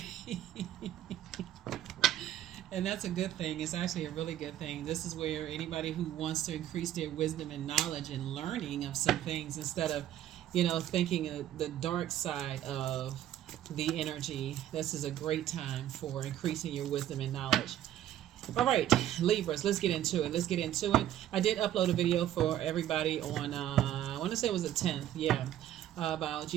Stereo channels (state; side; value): quieter; left; 12.1 dB